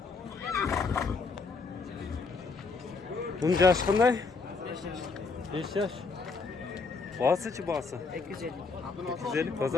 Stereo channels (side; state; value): right; quieter; 4.4 dB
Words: Bunun yaşı qanday? 5 yaş. Bağısıçı bağısı. 250. 250